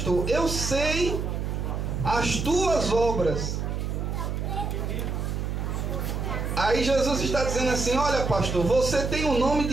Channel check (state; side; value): noise; right; hum, 2 dB below the sound